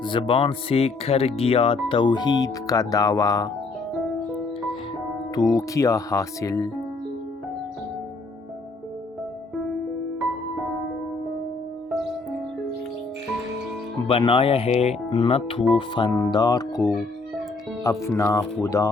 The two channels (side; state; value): right; quieter; 3.7 dB